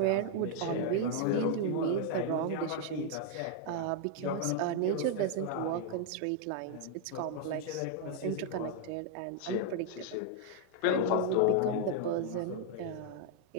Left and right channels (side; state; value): both; different; correlation 0.00